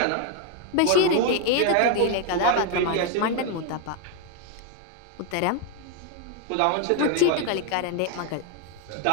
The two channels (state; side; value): different; both; correlation 0.01